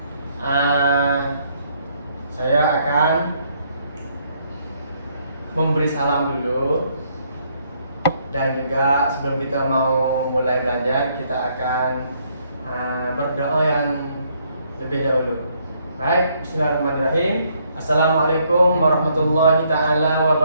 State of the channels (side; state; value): both; inverted; correlation -0.70